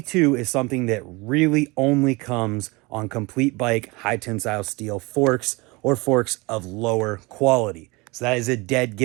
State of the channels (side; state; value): left; quieter; 24.9 dB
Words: is something that really only comes on complete bike high tensile steel forks or forks of lower quality. So that is a dead